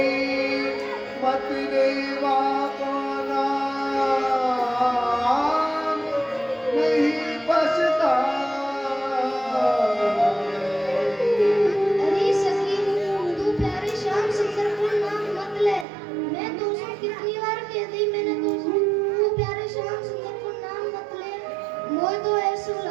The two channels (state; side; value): drops out; left; at 15.9 s